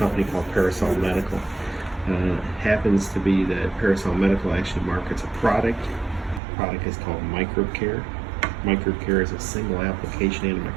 called Parasol Medical. Happens to be that Parasol Medical actually markets a product. The product is called Microcare. Microcare is a single application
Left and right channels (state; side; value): drops out; left; at 6.4 s